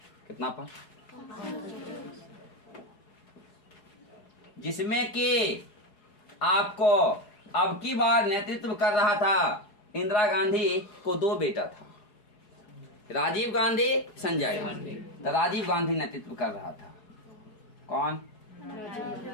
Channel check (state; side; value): late; right; 4.7 ms